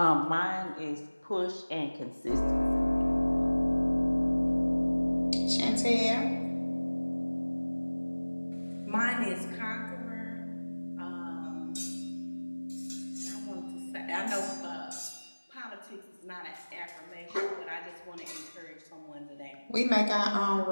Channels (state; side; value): inverted; both; correlation -1.00